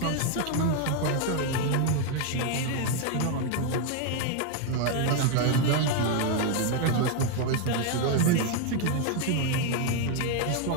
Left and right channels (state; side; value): different; both; correlation 0.01